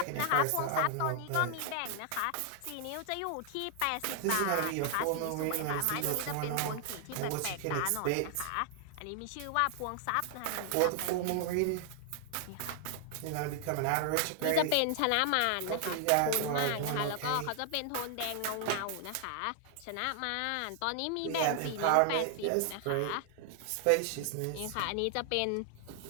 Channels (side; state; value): both; different; correlation 0.00